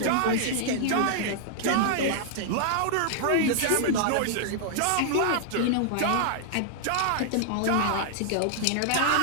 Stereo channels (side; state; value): both; different; correlation -0.01